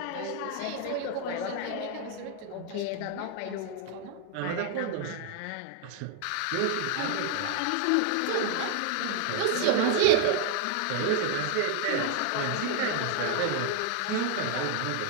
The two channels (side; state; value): both; different; correlation 0.00